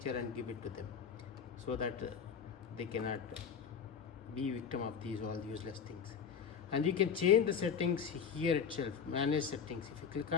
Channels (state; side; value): quieter; right; 6.9 dB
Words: and give it to them, so that they cannot be victim of these all useless things. And you can change the settings here itself. Manage settings. If you click